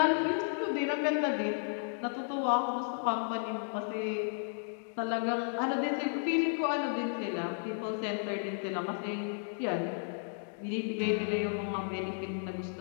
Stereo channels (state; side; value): silent; right; digital silence